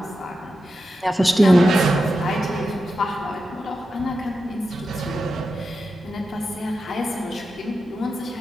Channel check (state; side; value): normal; both; correlation 0.90